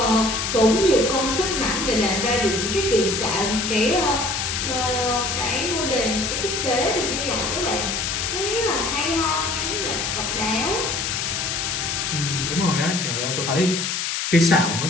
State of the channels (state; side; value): noise; left; hiss, 1 dB below the sound